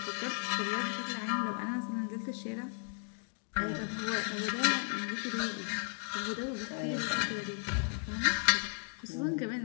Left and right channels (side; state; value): right; silent; 54 dB below the other